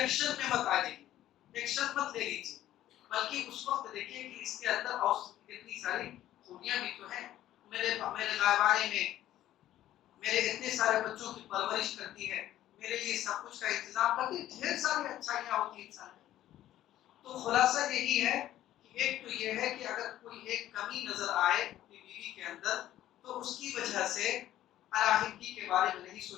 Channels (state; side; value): quieter; right; 13.2 dB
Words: میں مت آ جائیے، ایکشن مت لے لیجیے، بلکہ اس وقت دیکھیے کہ اس کے اندر اور کتنی ساری خوبیاں بھی تو ہیں، میرے غائبانے میں میرے اتنے سارے بچوں کی پرورش کرتی ہے، میرے لیے سب کچھ کا انتظام کرتی ہے، ڈھیر ساری اچھائیاں ہوتی ہیں انسان میں۔ تو خلاصہ یہی ہے کہ ایک تو یہ ہے کہ اگر کوئی ایک کمی نظر آئے اپنی بیوی کے اندر تو اس کی وجہ سے علیحدگی کے بارے میں نہیں